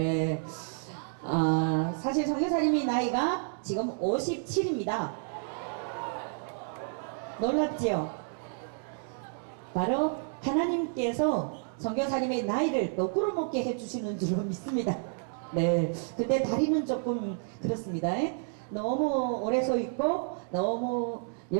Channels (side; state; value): left; silent; digital silence